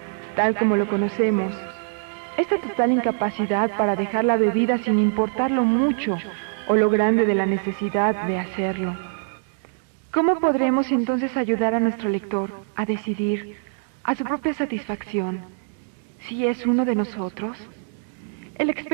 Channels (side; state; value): left; silent; digital silence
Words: Tal como lo conocemos, esta total incapacidad para dejar la bebida sin importar lo mucho o lo grande de la necesidad de hacerlo. ¿Cómo podremos entonces ayudar a nuestro lector a decidir, a su propia satisfacción, si es uno de nosotros? El